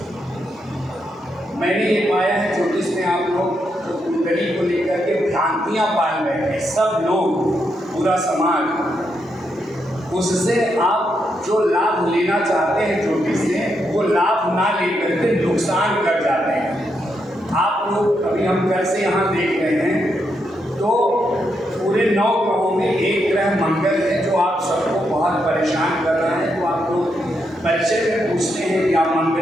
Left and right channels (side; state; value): both; normal; correlation 0.81